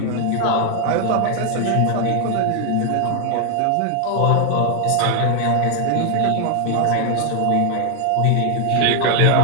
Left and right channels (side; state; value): both; different; correlation 0.00